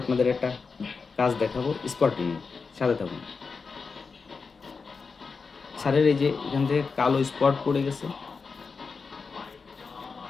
আপনাদের একটা কাজ দেখাবো, স্পটিং। সাথে থাকুন। স্যারের এই যে এখান থেকে কালো স্পট পড়ে গেছে,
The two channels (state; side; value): quieter; right; 4.9 dB